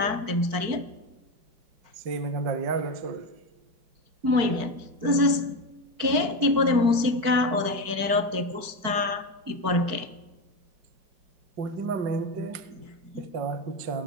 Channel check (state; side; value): late; left; 4.6 ms